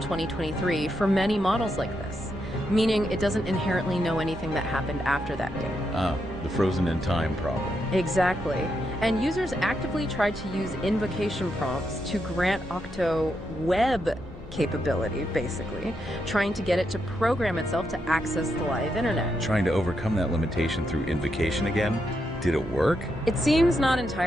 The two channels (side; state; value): both; normal; correlation 0.82